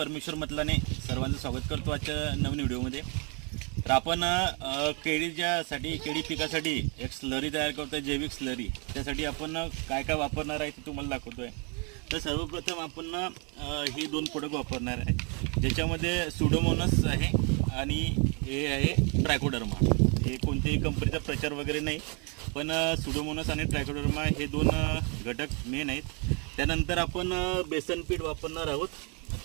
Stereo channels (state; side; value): quieter; left; 35.1 dB